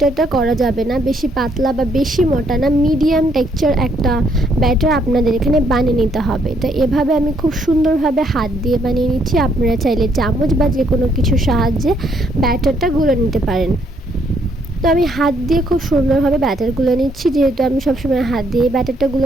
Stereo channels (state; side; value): normal; both; correlation 0.70